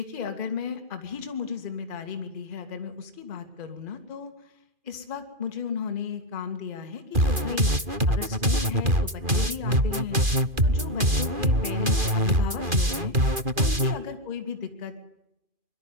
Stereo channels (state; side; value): late; left; 2.4 ms